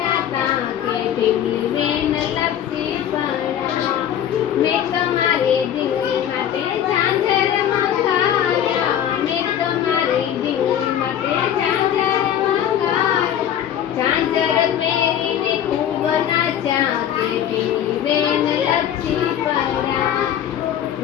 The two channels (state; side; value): quieter; right; 10.1 dB